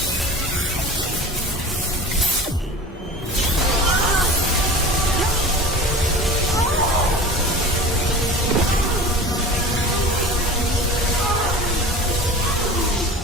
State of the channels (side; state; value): both; normal; correlation 0.37